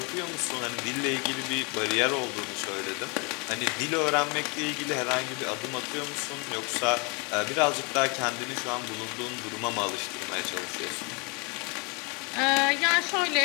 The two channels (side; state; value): right; quieter; 31.6 dB